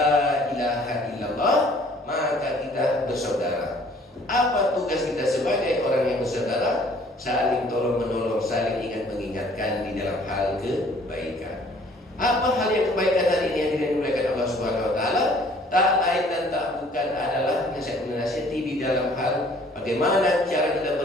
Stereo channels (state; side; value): normal; both; correlation 0.56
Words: ilaha illallah, maka kita bersaudara. Apa tugas kita sebagai orang yang bersaudara? Saling tolong menolong, saling ingat mengingatkan di dalam hal kebaikan. Apa hal yang kebaikan hari ini yang dimuliakan Allah Subhanahu wa taala? Tak lain dan tak bukan adalah nasihat-nasihati di dalam hal bagaimana cara kita